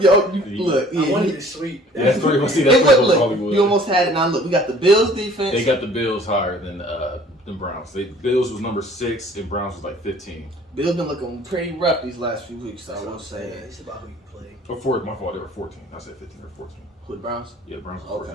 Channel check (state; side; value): normal; both; correlation 0.52